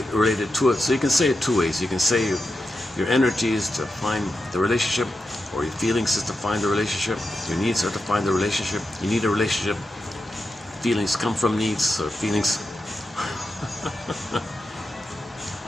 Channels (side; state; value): both; normal; correlation 0.88